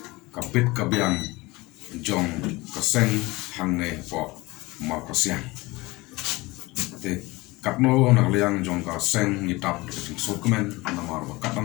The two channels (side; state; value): right; quieter; 22.0 dB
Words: kapit kabyang jong kaseng hangne po ma kasyang te kapno na liang jong kaseng ni tap ki sokmen na mar ba